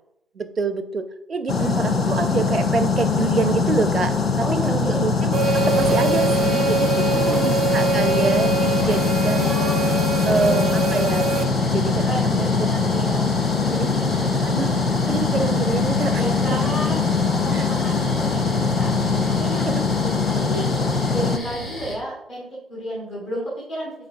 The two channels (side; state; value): both; normal; correlation 0.52